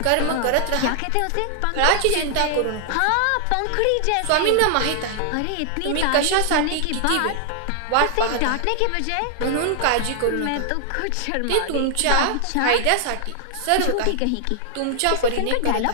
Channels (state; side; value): different; both; correlation 0.00